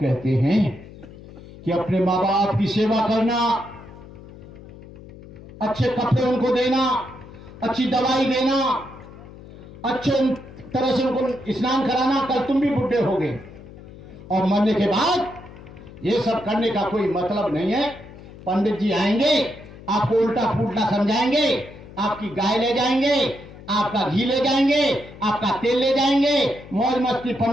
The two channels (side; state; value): left; noise; hum, 18 dB below the sound